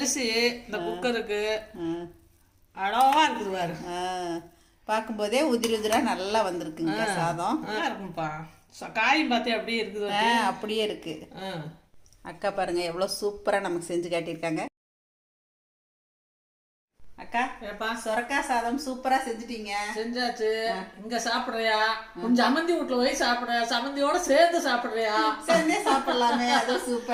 இந்த குக்கருக்கு அழகா இருக்குது பாரு. பார்க்கும்போதே உதிரா நல்லா வந்திருக்குங்க சாதம். இருக்கும்ப்பா. காயும் பார்த்தியா அப்படியே இருக்குது? அப்படியே இருக்கு. அக்கா பாருங்க எவ்வளோ சூப்பராக நமக்கு செஞ்சு காட்டியிருக்காங்க. அக்கா, சொரக்காய் சாதம் சூப்பரா செஞ்சுட்டீங்க. செஞ்சாச்சு. இங்க சாப்பிடுறியா? கொஞ்சம் அமந்தி வீட்டுல போய் சாப்பிடுறியா? சமந்தியோட சேர்ந்து சாப்பிடுறியா? சேர்ந்தே சாப்பிடலாமே, அது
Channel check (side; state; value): both; identical; correlation 1.00